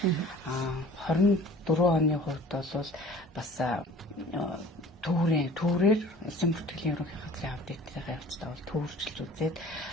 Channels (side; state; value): both; normal; correlation 0.46